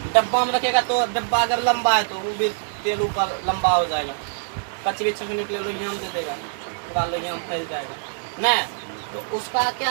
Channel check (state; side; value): silent; left; digital silence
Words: डब्बा में रखेगा तो डब्बा अगर लंबा है तो वो भी तेल ऊपर लंबा हो जाएगा। कचरी छकने के लिए लोहियाम दे देगा, पूरा लोहियाम फैल जाएगा। नहीं, तो उसका